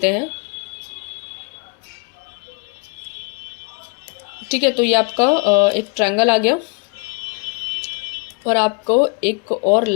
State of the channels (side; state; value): right; quieter; 34.5 dB